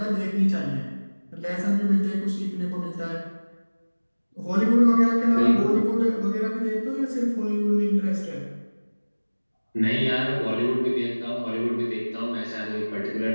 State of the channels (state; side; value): inverted; both; correlation -1.00